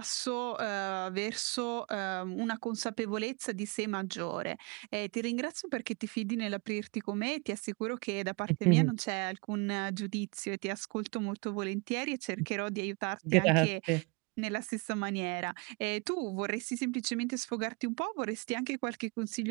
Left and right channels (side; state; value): left; quieter; 29.8 dB